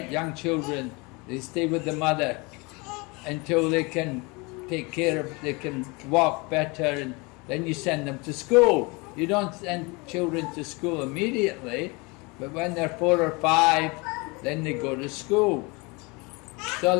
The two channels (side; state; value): right; quieter; 27.3 dB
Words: Young children, they stay with the mother until they can take care of, they can walk better, and then you send them to school. You don't send children to school immediately, but when they're 4 or 5, then they go to school. So